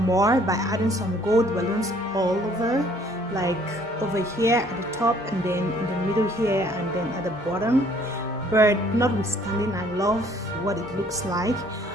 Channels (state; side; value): normal; both; correlation 0.60